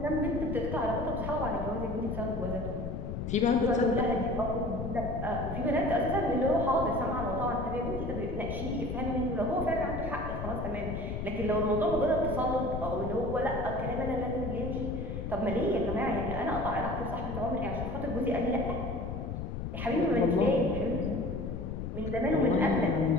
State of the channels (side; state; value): left; noise; rumble, 5 dB below the sound